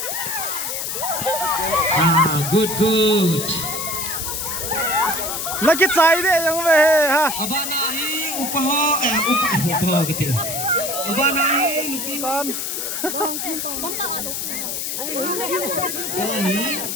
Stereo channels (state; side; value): noise; left; hiss, 3 dB below the sound